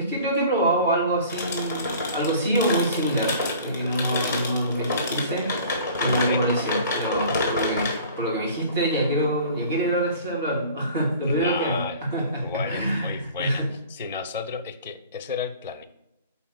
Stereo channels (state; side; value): inverted; both; correlation -0.46